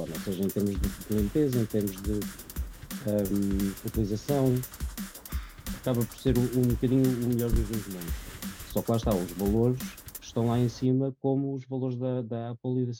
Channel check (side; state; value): both; identical; correlation 1.00